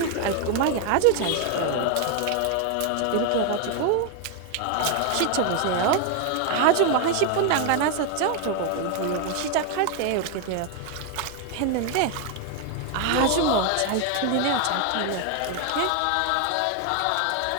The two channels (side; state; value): both; different; correlation 0.01